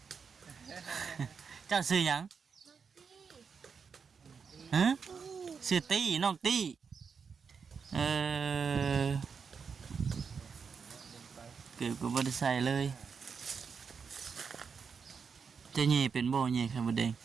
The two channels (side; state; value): left; quieter; 5.9 dB